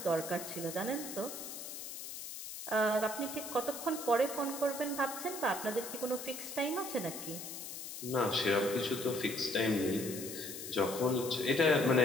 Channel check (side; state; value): left; noise; hiss, 9 dB below the sound